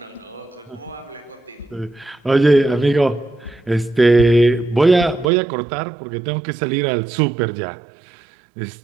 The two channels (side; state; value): left; drops out; at 5.3 s